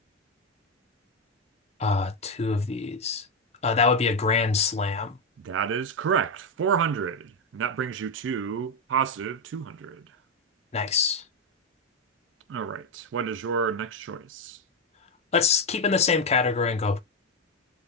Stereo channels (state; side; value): normal; both; correlation 0.07